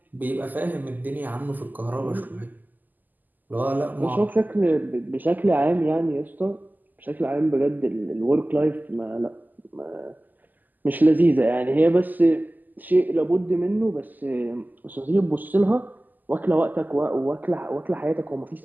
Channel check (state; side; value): late; left; 0.085 ms